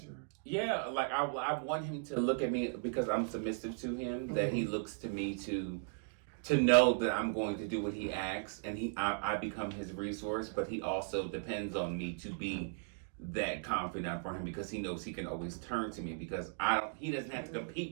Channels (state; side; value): silent; left; digital silence